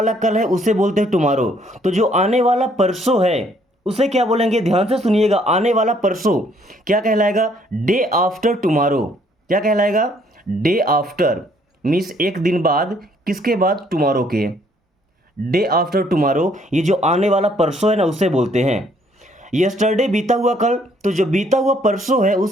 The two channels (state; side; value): normal; both; correlation 0.65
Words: कल है उसे बोलते हैं टुमारो। तो जो आने वाला परसों है उसे क्या बोलेंगे, ध्यान से सुनिएगा। आने वाला परसों क्या कहलाएगा, डे आफ्टर टुमारो। क्या कहलाएगा, डे आफ्टर मीन्स एक दिन बाद, किसके बाद, टुमारो के। डे आफ्टर टुमारो, ये जो आने वाला परसों है ना उसे बोलते हैं। यस्टरडे बीता हुआ कल, तो जो बीता हुआ परसों है